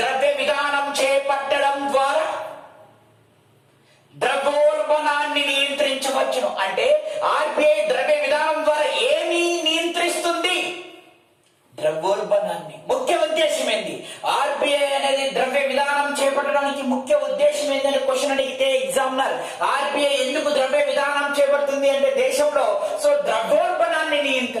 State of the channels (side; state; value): both; identical; correlation 1.00